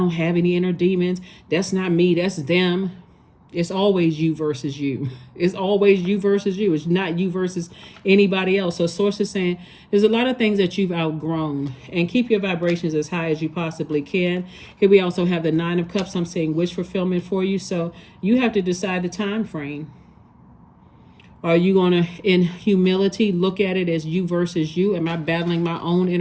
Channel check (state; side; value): identical; both; correlation 1.00